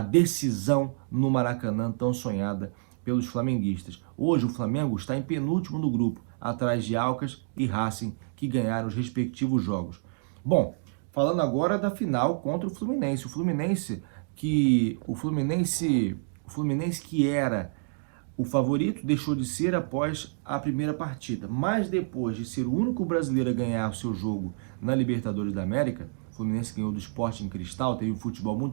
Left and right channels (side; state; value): left; silent; digital silence